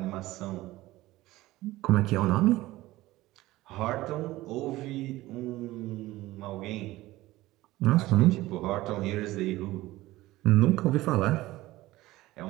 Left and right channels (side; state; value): left; quieter; 17.7 dB